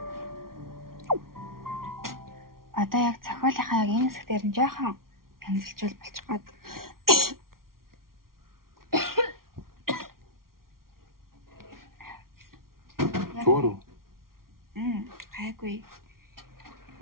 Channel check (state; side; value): late; left; 0.93 ms